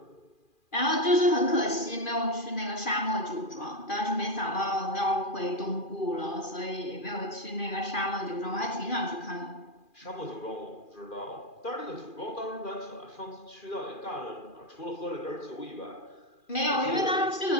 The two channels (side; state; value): right; late; 2.4 ms